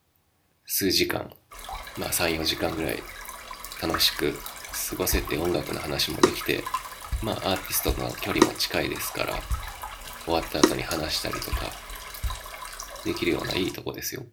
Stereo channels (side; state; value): both; identical; correlation 1.00